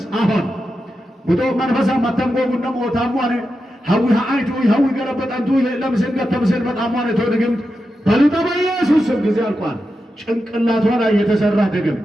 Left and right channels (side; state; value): both; normal; correlation 0.89